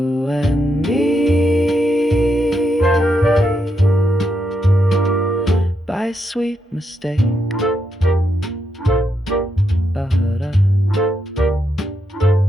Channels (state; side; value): normal; both; correlation 0.81